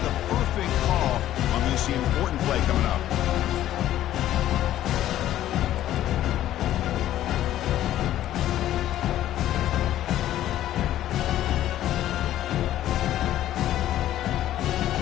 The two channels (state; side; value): quieter; right; 12.9 dB